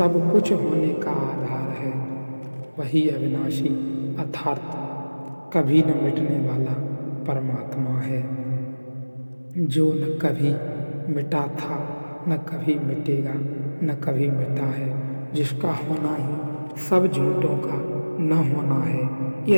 कुछ होने का आधार है, वही अविनाशी अर्थात कभी न मिटने वाला परमात्मा है, जो न कभी मिटा था, न कभी मिटेगा, न कभी मिटा है, जिसका होना ही सब झूठों का न होना है।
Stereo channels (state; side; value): inverted; both; correlation -1.00